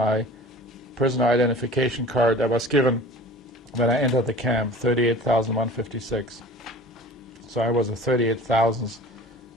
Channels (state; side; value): normal; both; correlation 0.42